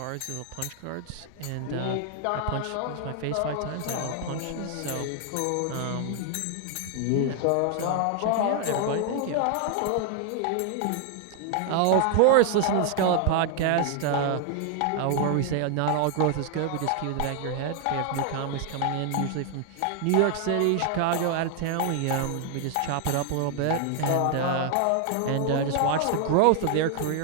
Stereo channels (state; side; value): different; both; correlation 0.00